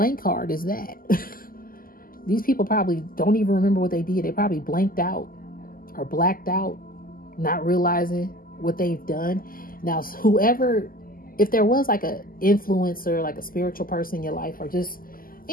card is that. These people probably don't even remember what they did. They probably blanked out or blacked out, not realizing what they've done. Now, whoever, if there was like a influencer, like a spiritual person in your life, or just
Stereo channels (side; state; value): right; late; 0.42 ms